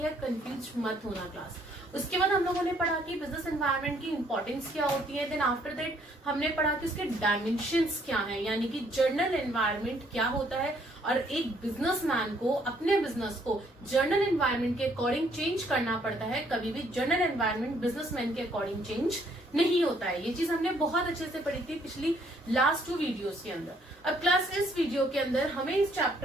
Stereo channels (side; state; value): both; normal; correlation 0.66